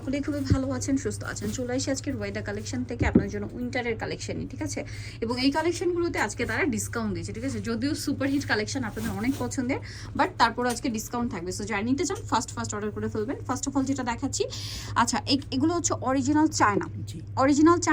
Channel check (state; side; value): identical; both; correlation 1.00